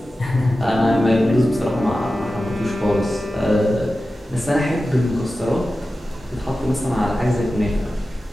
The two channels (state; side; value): normal; both; correlation 0.94